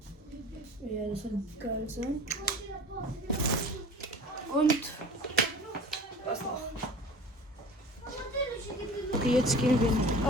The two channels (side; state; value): both; normal; correlation 0.41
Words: ja, das wird geil sein. Und was noch? Okay, jetzt gehen wir ins